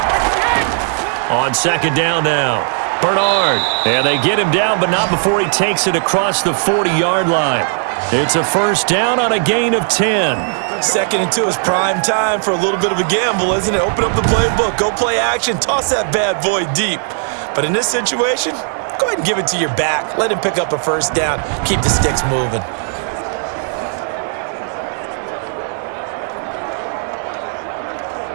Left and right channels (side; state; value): left; silent; 64 dB below the other